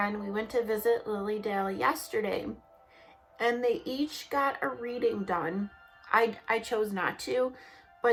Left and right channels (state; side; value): identical; both; correlation 1.00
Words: We went to visit Lilydale yesterday, and they each got a reading done. I chose not to,